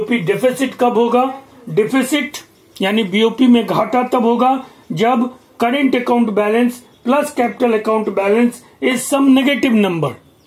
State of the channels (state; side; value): identical; both; correlation 1.00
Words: डेफिसिट कब होगा, डेफिसिट यानी बीओपी में घाटा तब होगा जब current account balance plus capital account balance is some negative number,